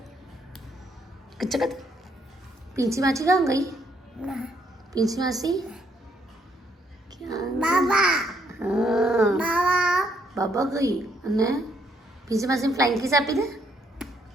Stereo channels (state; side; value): normal; both; correlation 0.71